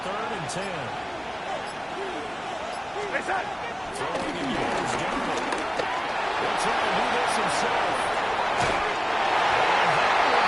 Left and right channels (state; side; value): identical; both; correlation 1.00